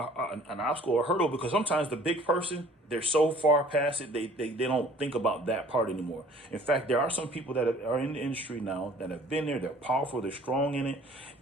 obstacle or hurdle, because sometimes the big person, they're so far past it, they don't think about that part anymore. In fact, there are some people that are in the industry now that have been there, they're powerful, they're strong in it,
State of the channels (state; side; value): normal; both; correlation 0.53